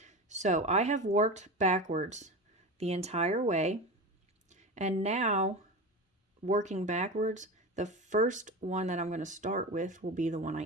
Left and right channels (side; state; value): both; normal; correlation 0.25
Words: So I have worked backwards the entire way, and now working backwards, the first one that I'm going to start with will be the one